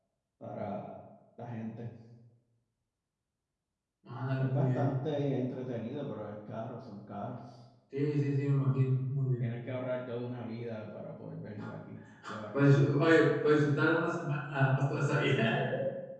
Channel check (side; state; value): both; identical; correlation 1.00